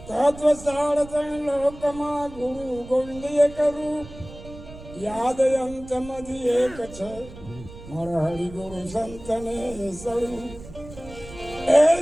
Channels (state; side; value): noise; right; rumble, 16 dB below the sound